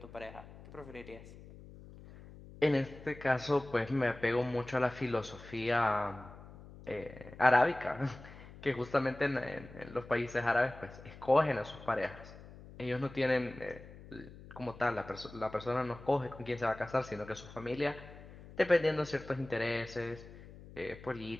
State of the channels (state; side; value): noise; left; hum, 17 dB below the sound